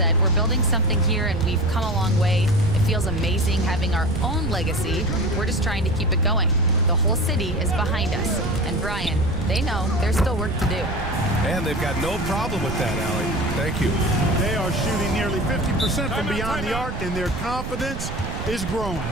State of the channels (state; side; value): noise; right; rumble, 6 dB below the sound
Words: "We're building something here and we've come a long way. It feels amazing having our own legacy. We're just trying to keep it going. The whole city is behind us." And Brian, they know there's still work to do. And they've got no problem with that, Allie. Thank you. They are shooting nearly 50% from beyond the arc, and their confidence is growing.